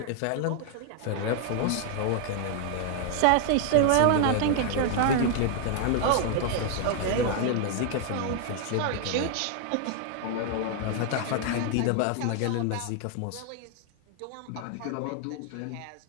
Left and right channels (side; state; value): both; different; correlation 0.00